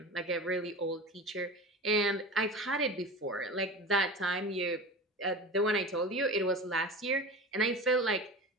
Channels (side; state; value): both; normal; correlation 0.32